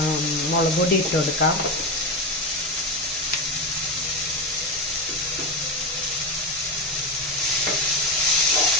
മുളക് പൊടി ഇട്ട് കൊടുക്കാം.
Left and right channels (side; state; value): both; normal; correlation 0.16